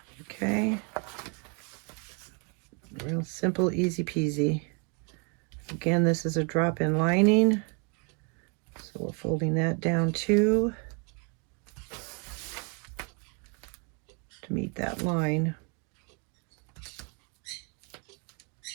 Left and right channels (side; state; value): left; quieter; 35.8 dB